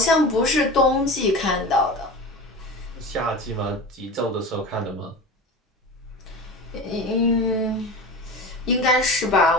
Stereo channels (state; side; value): normal; both; correlation 0.31